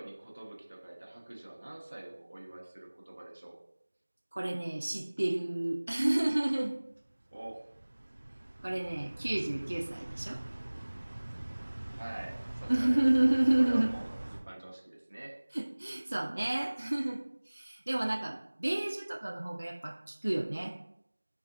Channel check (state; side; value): inverted; both; correlation -1.00